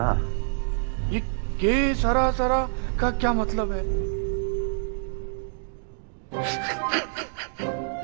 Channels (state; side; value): silent; left; digital silence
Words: ये के सरा सरा का क्या मतलब है?